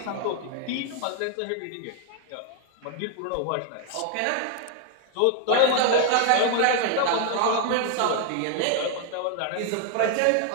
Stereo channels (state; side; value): different; both; correlation 0.00